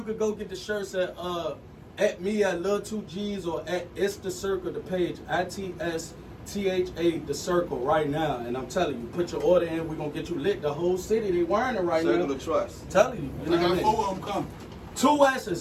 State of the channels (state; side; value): identical; both; correlation 1.00